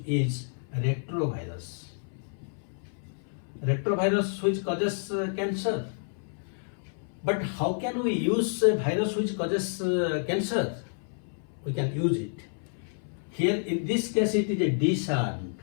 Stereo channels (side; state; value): right; silent; 58 dB below the other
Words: is retrovirus. Retrovirus which causes cancer. But how can we use a virus which causes cancer? We can use it. Here in this case it is a disarmed.